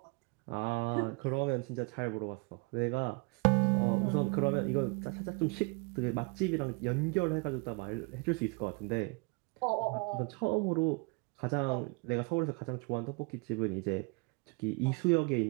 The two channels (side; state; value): left; quieter; 29.6 dB